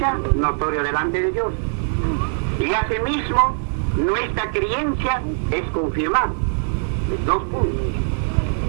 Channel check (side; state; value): left; silent; 56 dB below the other